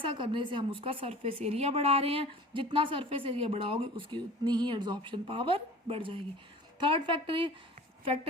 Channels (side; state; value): both; normal; correlation 0.41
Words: करने से हम उसका सरफेस एरिया बढ़ा रहे हैं. जितना सरफेस एरिया बढ़ाओगे उसकी उतनी ही एड्जॉर्प्शन पावर बढ़ जाएगी. थर्ड